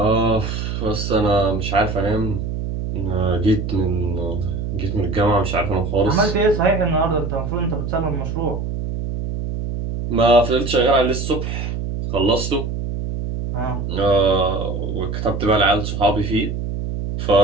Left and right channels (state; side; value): noise; right; hum, 4 dB below the sound